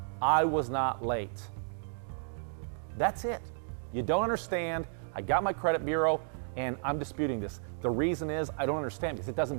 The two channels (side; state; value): left; silent; digital silence